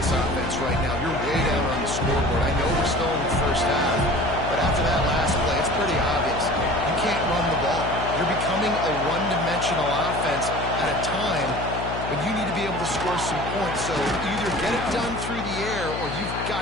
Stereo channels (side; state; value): left; noise; hum, 7 dB below the sound